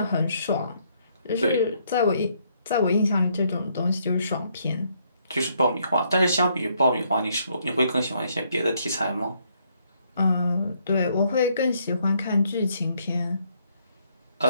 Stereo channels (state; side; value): inverted; both; correlation -0.71